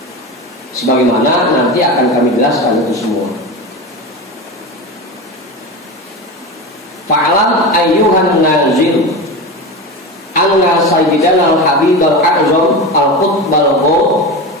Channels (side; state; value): both; normal; correlation 0.24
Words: Sebagaimana nanti akan kami jelaskan itu semua. Fa'alam ayyuhan nazil anna sayyidana al-habib al-a'zam al-qutb al-ghaw